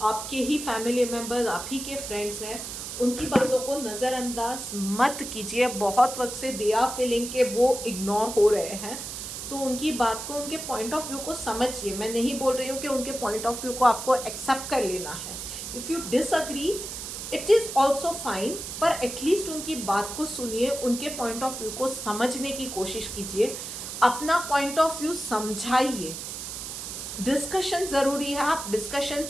आपके ही फैमिली मेम्बर्स, आप ही के फ्रेंड्स हैं, उनकी बातों को नज़रअंदाज मत कीजिए। बहुत वक्त से दे आर फीलिंग के वो इग्नोर हो रहे हैं, तो उनकी बात को, उनके पॉइंट ऑफ व्यू को समझिए। मैं नहीं बोल रही हूँ कि उनके पॉइंट ऑफ व्यू को आपको एक्सेप्ट कर लेना है। If you disagree it is also fine, पर एटलीस्ट उनकी बात को सुनिए, उनके पॉइंट ऑफ व्यू को समझने की कोशिश कीजिए, अपना पॉइंट ऑफ व्यू समझाइए। डिस्कशन ज़रूरी है, आप डिस्कशन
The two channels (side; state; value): right; noise; hiss, 7 dB below the sound